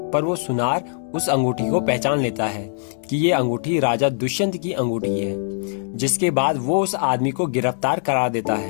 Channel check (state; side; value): silent; right; digital silence